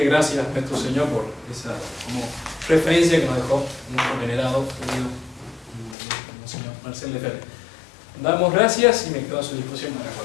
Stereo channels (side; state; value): right; drops out; at 6.0 s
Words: gracias a nuestro Señor por esa como referencia que nos dejó nuestro venerado, querido Monseñor Marcel Lefebvre. Damos gracias y me quedo a su disposición para